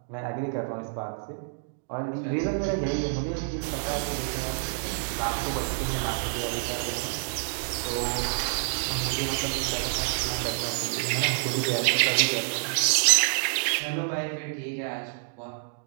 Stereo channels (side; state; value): left; silent; digital silence